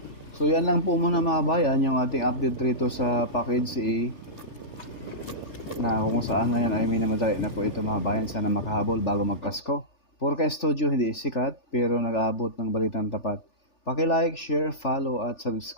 So yan lang po muna mga bayan, yung ating update rito sa package A na kung saan ngayon ay minamadali na po ito mga bayan, sana makahabol bago magpasko. Purka Studio hindi sikat pero nag-aabot ng balitang tapat. Paki-like, share, follow at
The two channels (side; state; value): right; late; 3.4 ms